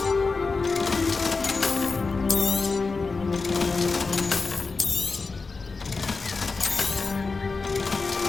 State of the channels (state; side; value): quieter; right; 4.2 dB